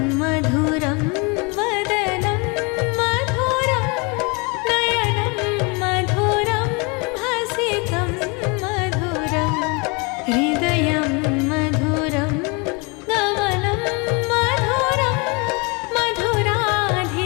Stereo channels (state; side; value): quieter; right; 30.2 dB